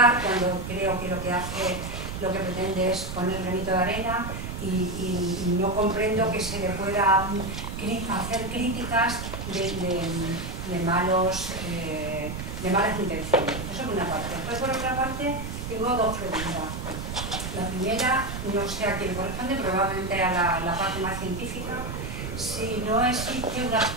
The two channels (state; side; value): noise; right; rumble, 6 dB below the sound